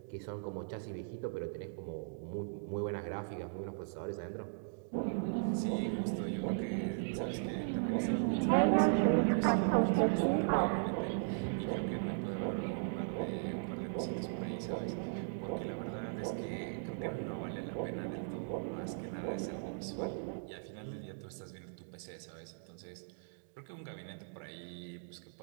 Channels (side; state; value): left; silent; digital silence